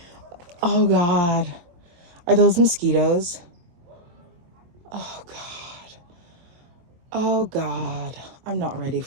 Oh God, are those mosquitoes? Oh God. Oh God, I'm not ready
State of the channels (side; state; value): left; late; 23 ms